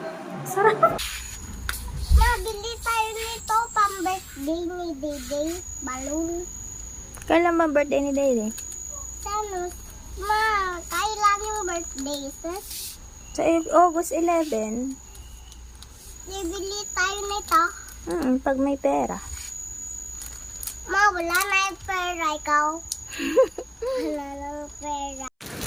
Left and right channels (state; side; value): identical; both; correlation 1.00